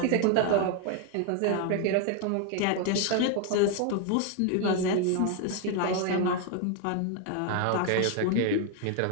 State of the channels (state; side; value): different; both; correlation 0.00